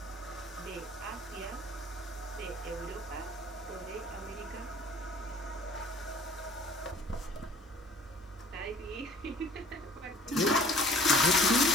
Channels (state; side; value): normal; both; correlation 0.52